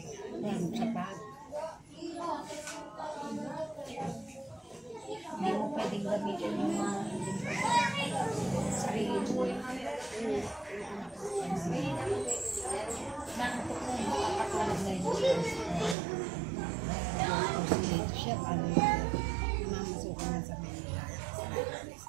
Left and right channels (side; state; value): left; drops out; at 16.0 s